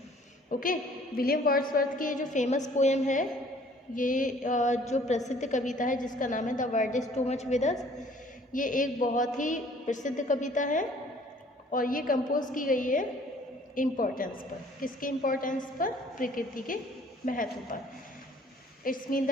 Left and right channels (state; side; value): normal; both; correlation 0.56